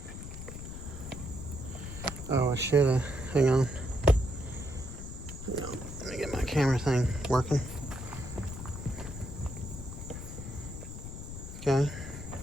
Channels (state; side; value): noise; left; rumble, 9 dB below the sound